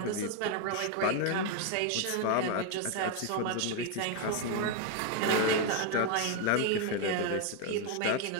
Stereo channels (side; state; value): both; different; correlation 0.01